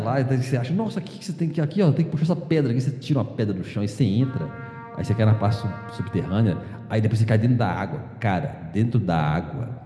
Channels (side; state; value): both; identical; correlation 1.00